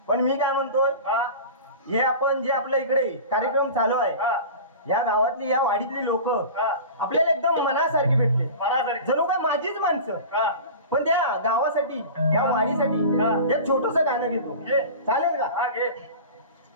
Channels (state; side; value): inverted; both; correlation -0.34